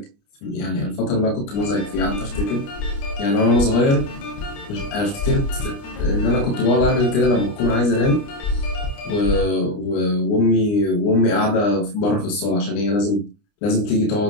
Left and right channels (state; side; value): late; right; 29 ms